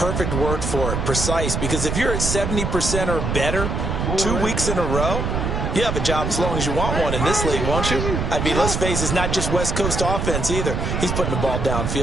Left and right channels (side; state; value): right; noise; rumble, 1 dB below the sound